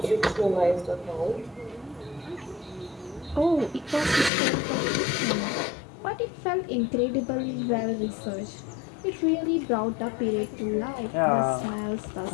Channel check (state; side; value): drops out; right; at 4.3 s